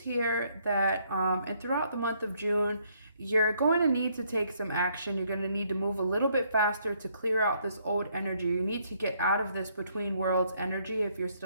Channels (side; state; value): both; inverted; correlation -0.69